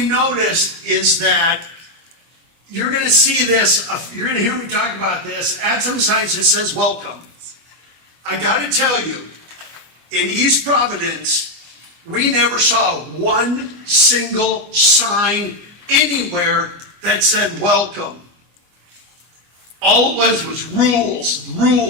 noticed is that you're going to see this, you're going to hear me talk about this, at some signs that says welcome. I got to tell you, in East Providence, we never saw one single sign anywhere that said welcome. All it was rules,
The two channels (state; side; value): late; left; 25 ms